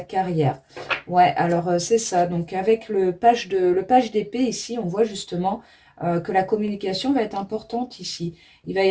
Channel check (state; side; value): identical; both; correlation 1.00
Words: Ouais, alors c'est ça. Donc avec le page d'épée ici, on voit justement que la communication va être importante ici. Il va